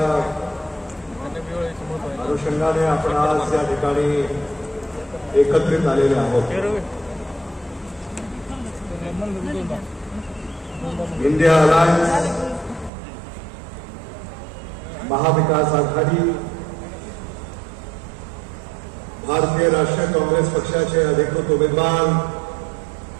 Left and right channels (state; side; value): drops out; left; at 12.9 s